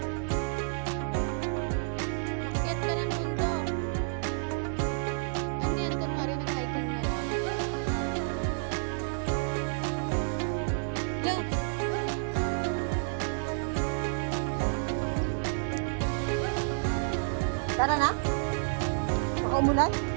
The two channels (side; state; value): left; silent; digital silence